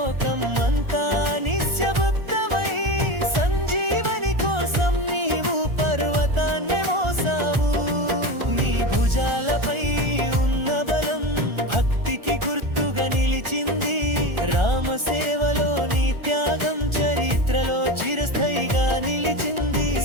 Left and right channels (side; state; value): left; late; 1.4 ms